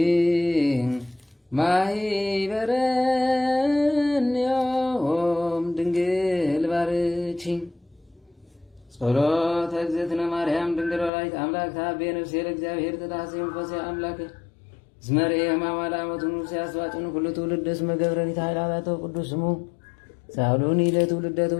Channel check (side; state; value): right; drops out; at 11.1 s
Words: ማኅበረንዮ ጸሎተ እግዝእትነ ማርያም ድንግል ወላዲተ አምላክ ታቤ ነፍሴ ለእግዚአብሔር ተታሰይ መንፈሴ አምላክ እስመ ርኤ ሕማማ ለአመቱ ንጉሥ ያስዋጭን ኩሉ ትውልድ እስመ ገብረኒት ኃይላቶ ቅዱስ ስሙ ሳሉኒ ለትውልደ